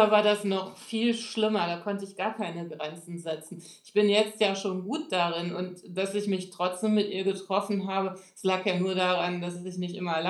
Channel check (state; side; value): identical; both; correlation 1.00